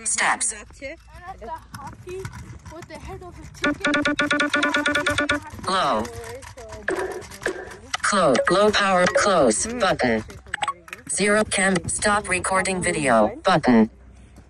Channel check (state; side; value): identical; both; correlation 1.00